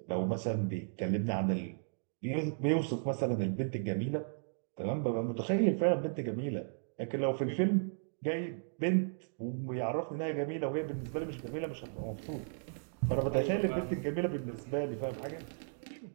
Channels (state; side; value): silent; left; digital silence